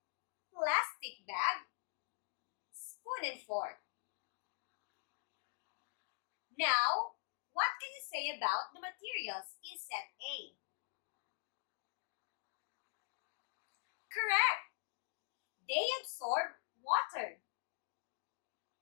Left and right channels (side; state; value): right; silent; digital silence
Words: plastic bag, spoon and fork. Now, what can you say about the materials in set A? Correct! They absorb water.